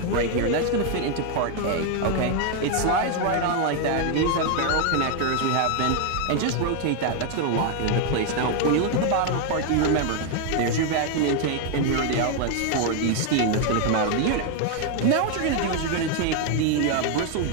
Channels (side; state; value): both; different; correlation 0.01